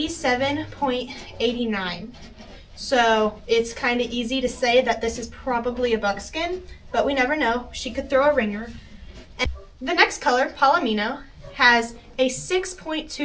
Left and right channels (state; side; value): identical; both; correlation 1.00